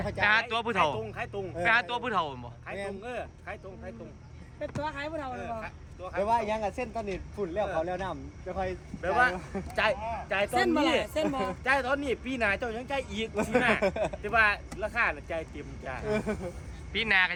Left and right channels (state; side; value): identical; both; correlation 1.00